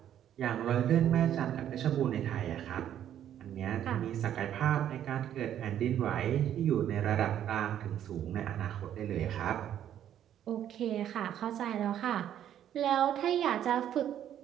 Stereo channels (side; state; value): left; quieter; 10.6 dB